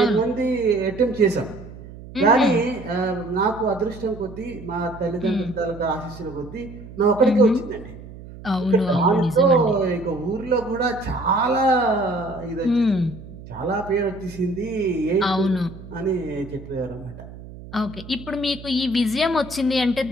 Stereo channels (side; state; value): right; noise; hum, 15 dB below the sound